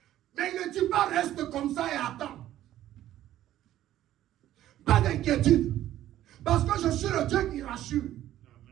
Mais il ne dit pas reste comme ça et attends. Pas d'inquiétude. Parce que je suis le Dieu qui rassure.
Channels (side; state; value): left; quieter; 13.0 dB